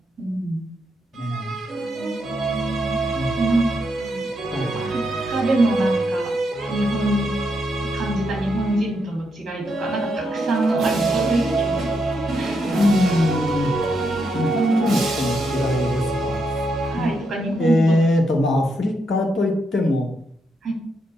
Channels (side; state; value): both; normal; correlation 0.80